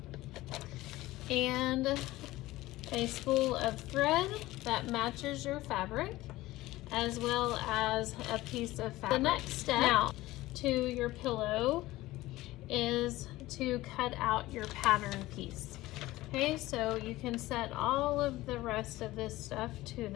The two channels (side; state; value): right; quieter; 17.7 dB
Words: and a spool of thread that matches your fabric, as well as a piece of fabric. The next step now to your pillow is to cut out your pattern piece. Okay, so you can set all of the rest of this stuff to